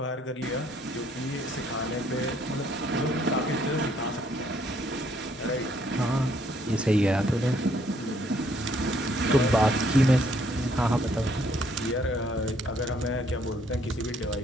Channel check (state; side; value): normal; both; correlation 0.67